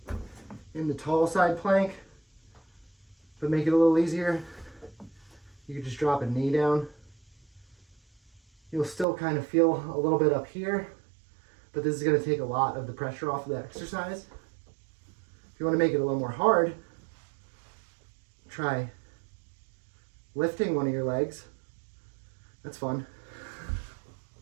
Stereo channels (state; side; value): drops out; left; at 9.1 s